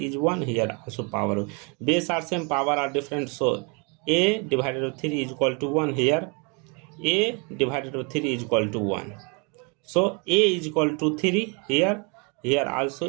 1, here also power. Base are same, power are different, so a divided by 3 is equal to 1. Here a divided by 3 is equal to 1. So a is equal to 3. Here also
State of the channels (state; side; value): quieter; left; 32.9 dB